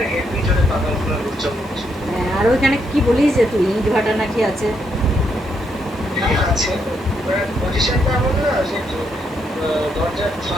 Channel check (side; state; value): both; normal; correlation 0.77